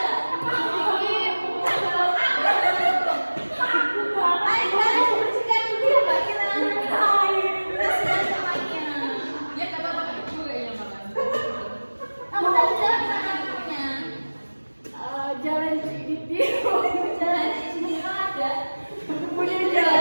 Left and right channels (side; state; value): both; inverted; correlation -1.00